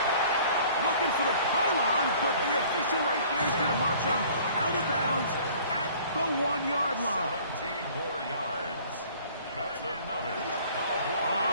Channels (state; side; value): inverted; both; correlation -0.52